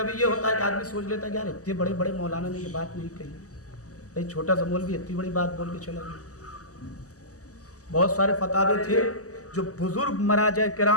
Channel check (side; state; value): right; late; 0.66 ms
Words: ये होता है कि आदमी सोच लेता है कि यार इतने बड़े बड़े मौलाना ने ये बात नहीं कही, भाई छोटा सा मौलवी इतनी बड़ी बात बोल के चला गया। बहुत सारे फतावे थे जो बुजुर्ग मराजा